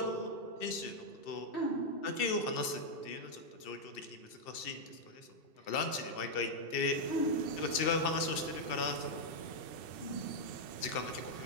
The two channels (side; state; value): right; late; 2.7 ms